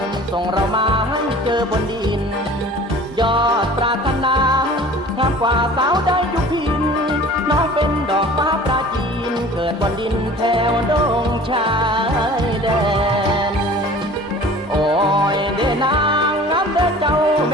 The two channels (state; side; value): normal; both; correlation 0.44